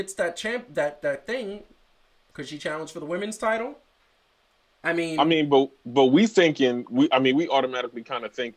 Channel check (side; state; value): both; identical; correlation 1.00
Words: that that thing, could she challenge for the women's title? I mean, but we automatically kind of